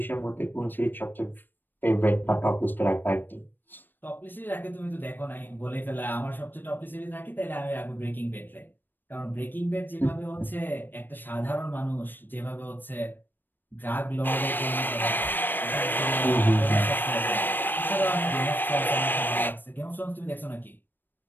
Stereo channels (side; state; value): right; late; 0.093 ms